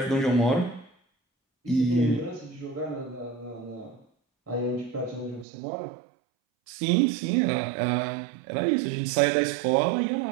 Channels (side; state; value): left; drops out; at 5.5 s